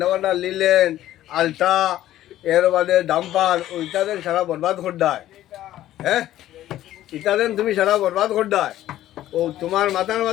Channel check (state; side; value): quieter; right; 13.5 dB